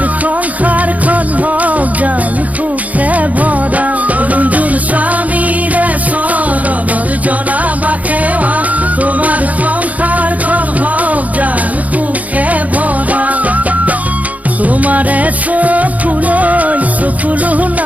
সংসাৰখন হওক জান সুখে ভৰা। অৰুণজোন স্বামীৰে চৰণত জনাবা সেৱা, তোমাৰ সংসাৰখন হওক জান সুখে ভৰা। তোমাৰে চকুলো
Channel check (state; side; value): late; left; 0.073 ms